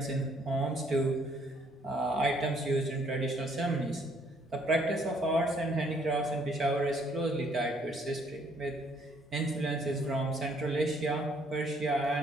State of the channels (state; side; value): normal; both; correlation 0.65